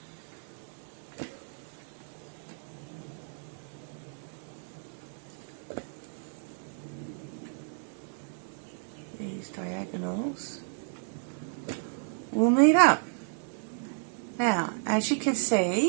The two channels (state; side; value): silent; left; 56 dB below the other